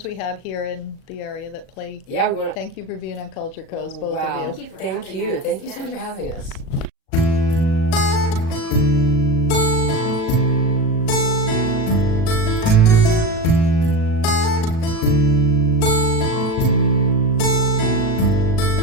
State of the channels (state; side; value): late; right; 37 ms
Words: we have here in the area that play. Yeah, we want to thank you for being on Culture Coast, both wow. of you. Thank you. Thank you so much for having us.